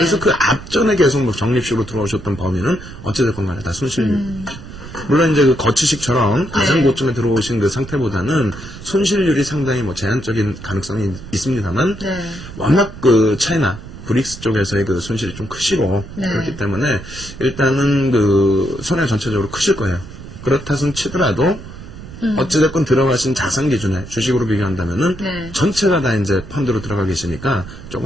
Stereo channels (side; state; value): right; noise; rumble, 14 dB below the sound